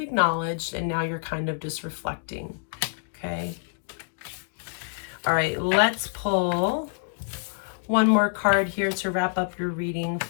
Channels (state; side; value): silent; right; digital silence